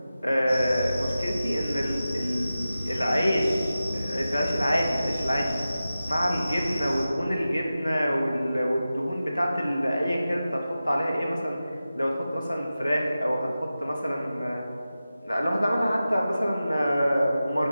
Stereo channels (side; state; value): both; inverted; correlation -0.94